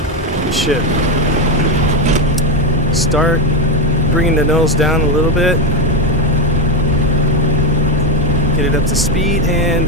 ship. Start bringing the nose down a little bit. Get it up to speed, and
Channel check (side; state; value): both; normal; correlation 0.10